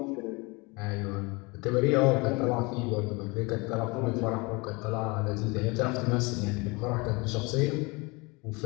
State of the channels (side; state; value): right; quieter; 26.5 dB